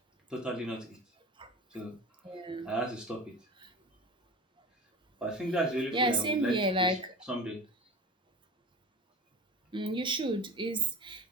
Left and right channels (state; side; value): normal; both; correlation 0.33